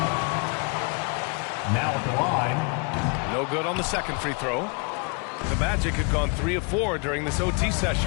Now at the line. No good on the second free throw. The Magic had gone 3 of 4 during this OT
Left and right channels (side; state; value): right; quieter; 33.8 dB